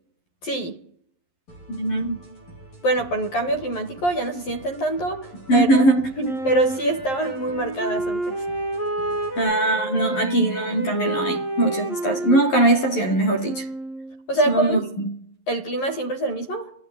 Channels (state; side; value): late; right; 11 ms